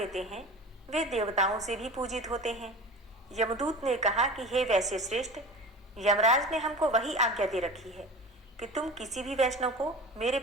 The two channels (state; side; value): normal; both; correlation 0.35